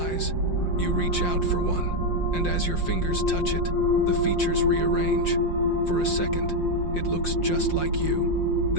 You reach out for one, and as your fingers touch it, the features rearrange. For a second, it looks just like you.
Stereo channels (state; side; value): late; right; 5.6 ms